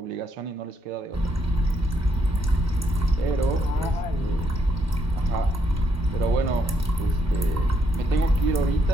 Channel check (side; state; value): both; normal; correlation 0.75